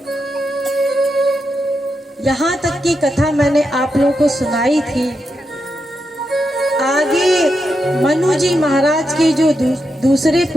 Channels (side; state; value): both; normal; correlation 0.85